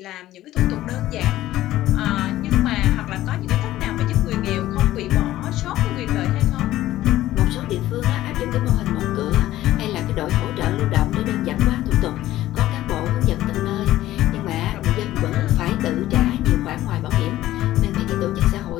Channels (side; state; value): right; quieter; 14.7 dB